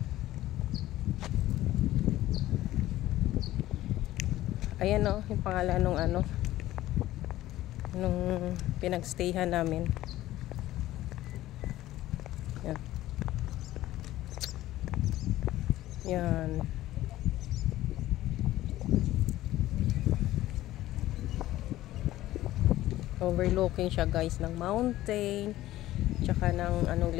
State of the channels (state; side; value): quieter; right; 15.2 dB